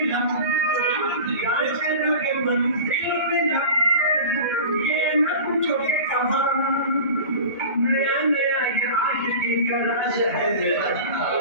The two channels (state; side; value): inverted; both; correlation -0.35